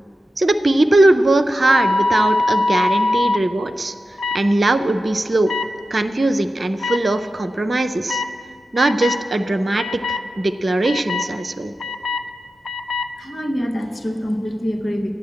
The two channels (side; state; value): both; normal; correlation 0.92